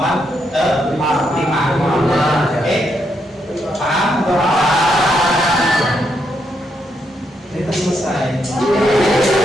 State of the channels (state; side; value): normal; both; correlation 0.79